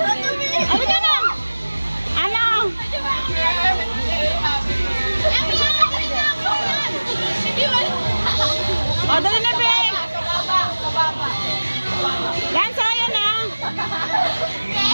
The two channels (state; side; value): inverted; both; correlation -1.00